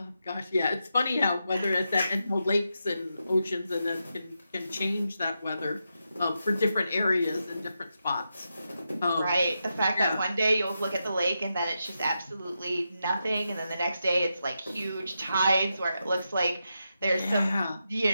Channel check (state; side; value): inverted; both; correlation -0.86